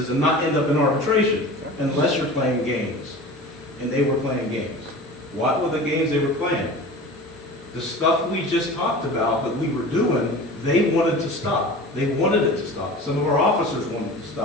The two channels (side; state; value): both; normal; correlation 0.36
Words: and not end up in arbitration unless you're playing games. And they were playing games. What were the games they were playing? The stuff we just talked about that we were doing, they wanted to stop. They wanted it to stop. Some of our officers wanted to